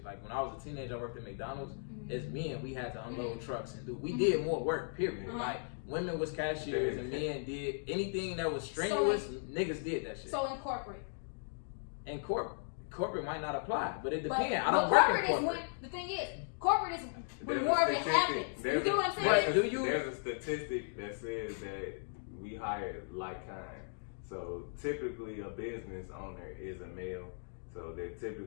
Like when I was a teenager, I worked at McDonald's. Mm-hmm. As men, we had to unload trucks and do. We did more work. Period. Mm-hmm. Like women was cashiers and men did anything that was strenuous. Niggas did that shit. So in corporate. And corporate might not apply, but it depends. But I don't work in corporate. Is when, the thing is, corporate is when more of it happens. You get what I'm saying? There's a statistic that says that we hire like kind. So typically a business owner is a male. So they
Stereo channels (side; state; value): right; silent; digital silence